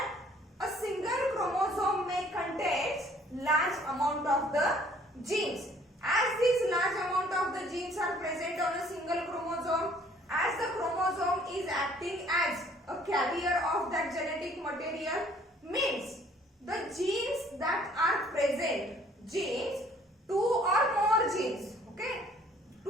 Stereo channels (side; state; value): both; normal; correlation 0.58